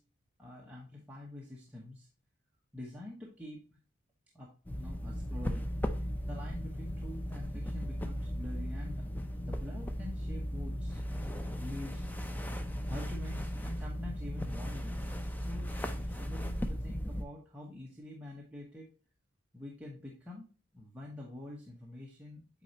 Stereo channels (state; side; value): normal; both; correlation 0.94